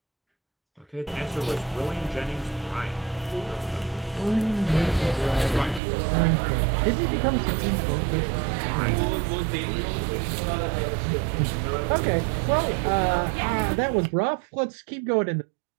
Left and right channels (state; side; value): drops out; left; at 5.8 s